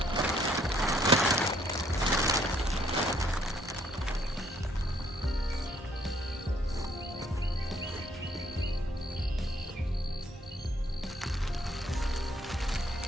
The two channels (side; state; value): both; normal; correlation 0.66